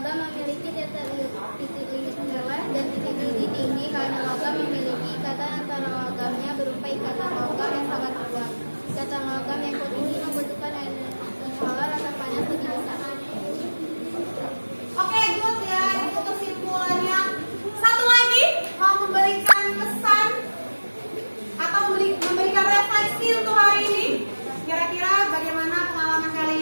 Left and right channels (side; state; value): both; inverted; correlation -1.00